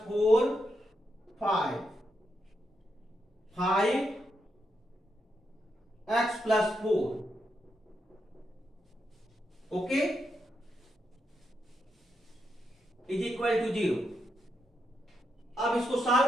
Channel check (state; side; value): normal; both; correlation 0.82